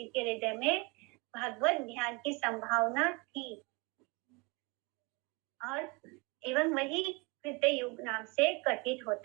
के हृदय में भगवत ध्यान की संभावना थी और एवं वही कृत्य युग नाम से कथित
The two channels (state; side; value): quieter; left; 28.4 dB